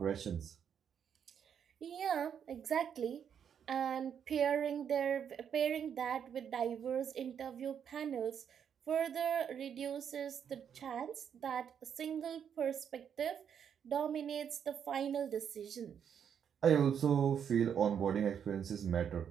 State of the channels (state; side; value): quieter; left; 8.1 dB